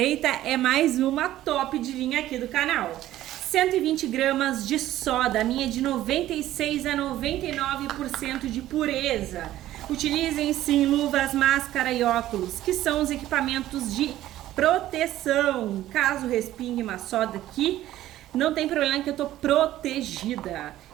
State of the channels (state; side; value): quieter; left; 14.0 dB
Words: é mais uma top de linha aqui do canal. 120 gramas de soda, a minha é de 96 a 99% de pureza. Utilizem sim luvas, máscara e óculos, que são os equipamentos de proteção. Caso respingue uma soda aqui, não tem problema que eu tô protegida.